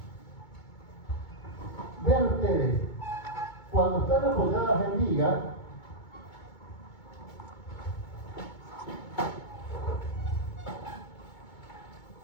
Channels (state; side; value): late; right; 2.2 ms